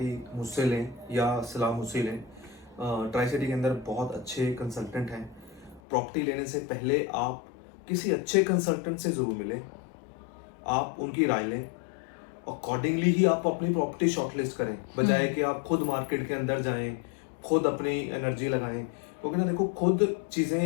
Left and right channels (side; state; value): right; drops out; at 5.8 s